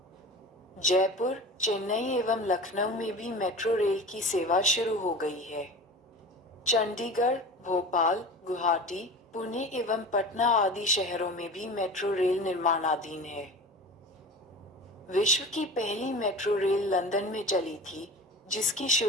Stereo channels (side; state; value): both; normal; correlation 0.34